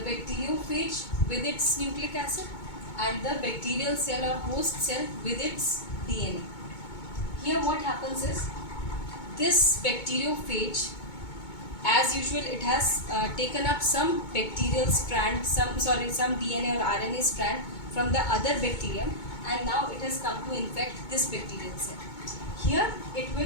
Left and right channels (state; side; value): late; right; 2.2 ms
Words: with its nucleic acid and the bacterial cell or host cell with its DNA. Here what happens is, this bacteriophage, as usual, it has taken up some bacterial strand, some DNA or RNA strand from the other bacterium, and now it has come to infect this bacterial cell. Here